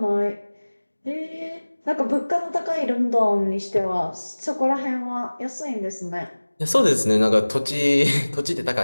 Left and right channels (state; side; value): inverted; both; correlation -1.00